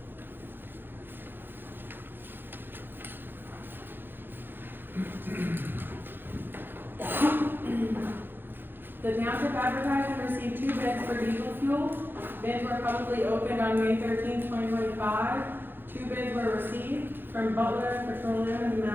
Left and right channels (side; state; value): left; late; 0.099 ms